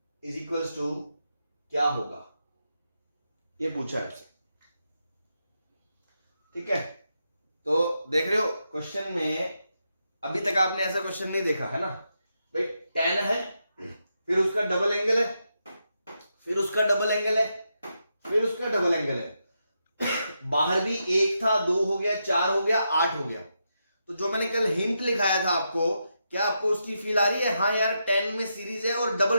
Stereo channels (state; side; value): inverted; both; correlation -0.84